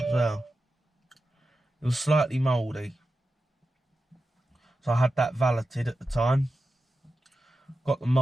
well. It was slightly mouldy. So I had that valeted at the time. Got the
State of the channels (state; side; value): normal; both; correlation 0.91